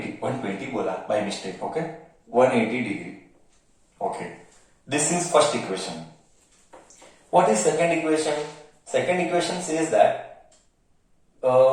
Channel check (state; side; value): identical; both; correlation 1.00